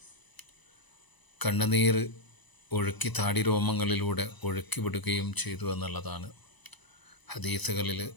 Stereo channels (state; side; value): late; right; 1.0 ms